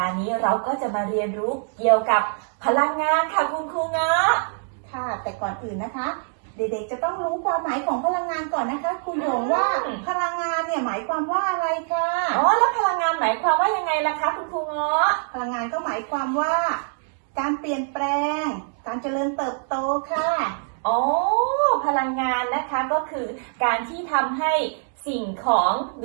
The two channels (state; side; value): silent; left; digital silence